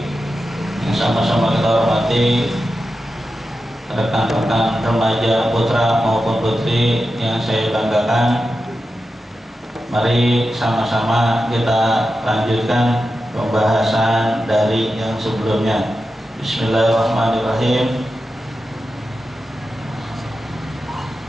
yang sama-sama kita hormati rekan-rekan remaja putra maupun putri yang saya banggakan. Mari sama-sama kita lanjutkan pembahasan dari yang sebelumnya. Bismillahirrahmanirrahim.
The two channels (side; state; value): both; normal; correlation 0.91